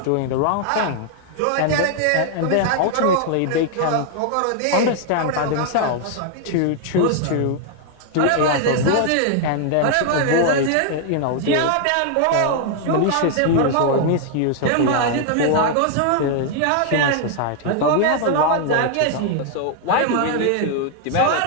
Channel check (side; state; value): both; different; correlation 0.00